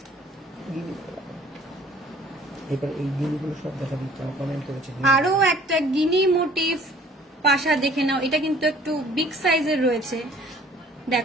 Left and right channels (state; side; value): normal; both; correlation 0.53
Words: এবার এই জিনিসগুলো সব দেখা দিচ্ছে, কমেন্ট করেছে। আরো একটা গিনি মোটিভ পাশা দেখে নাও, এটা কিন্তু একটু বিগ সাইজের রয়েছে,